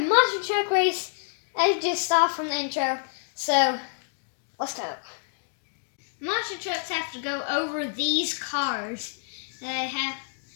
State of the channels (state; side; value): silent; right; digital silence